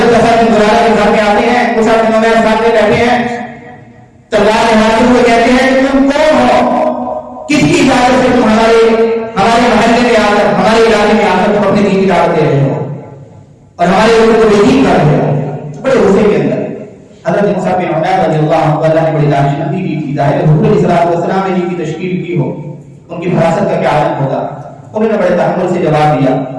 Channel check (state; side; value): identical; both; correlation 1.00